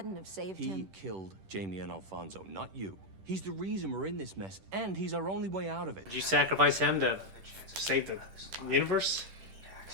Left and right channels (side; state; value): left; late; 10 ms